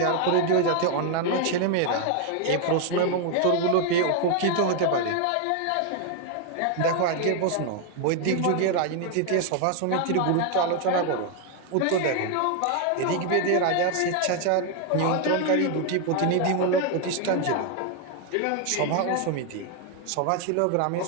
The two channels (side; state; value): both; different; correlation 0.01